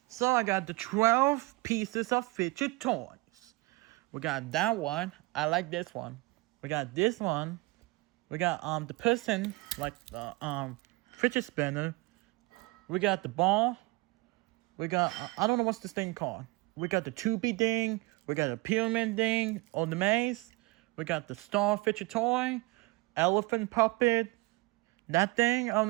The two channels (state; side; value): quieter; left; 23.9 dB